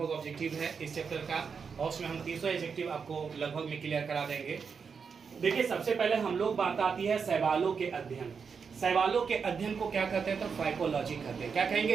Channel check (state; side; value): quieter; left; 5.9 dB